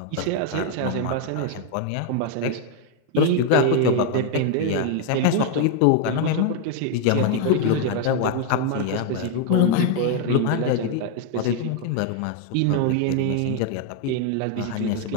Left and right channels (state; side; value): different; both; correlation 0.01